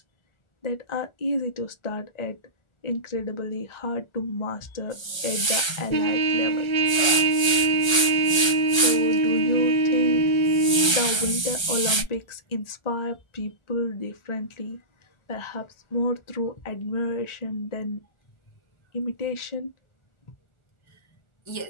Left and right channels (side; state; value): right; late; 1.3 ms